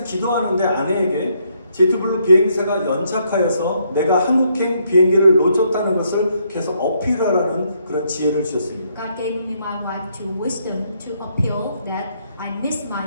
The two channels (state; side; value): inverted; both; correlation -0.73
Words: 기도하는데 아내에게 제트블루 비행사가 연착하여서 내가 한국행 비행기를 놓쳤다는 것을 계속 어필하라는 그런 지혜를 주셨습니다. God gave me my wife to wisdom to appeal that I missed